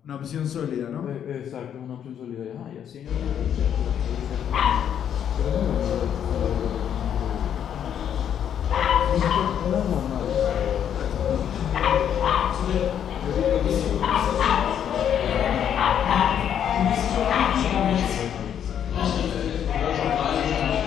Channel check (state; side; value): quieter; right; 9.2 dB